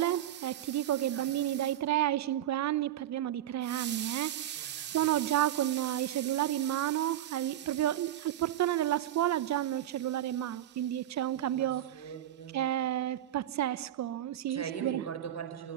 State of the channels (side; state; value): left; quieter; 12.0 dB